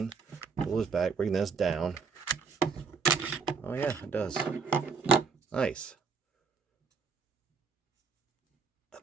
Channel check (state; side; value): quieter; left; 5.3 dB